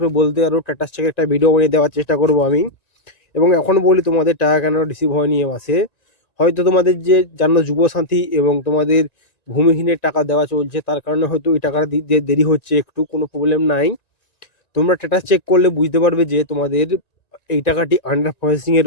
বলতে পারো, স্ট্যাটাস চেকের একটা ভিডিও বানিয়ে দেওয়ার চেষ্টা করবো আমি। এবং এখন বলি তোমাদের টাকা কেন রিসিভ হয়নি এ মাসে। হয়তো তোমাদের যে জানো যুবসাথী এবং তোমাদের ভূমিহীনের টাকা দেওয়া চলছে, তার কারণে হয়তো এই টাকাটা দিতে দেরি হচ্ছে, একটু কোনো প্রবলেম নাই। তোমরা স্ট্যাটাস চেক করলে বুঝতে পারবে যে তোমাদের এই টাকাটি আন্ডার প্রসেসিং এ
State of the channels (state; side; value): late; right; 1.9 ms